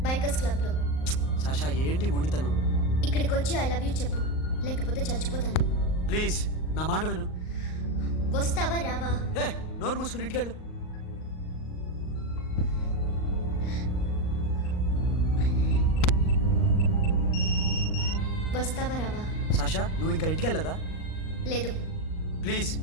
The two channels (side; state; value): right; late; 38 ms